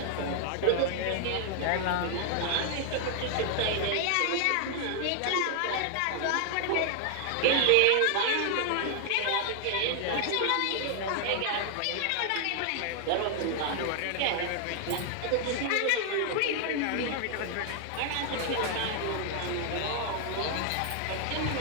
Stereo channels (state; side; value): different; both; correlation 0.00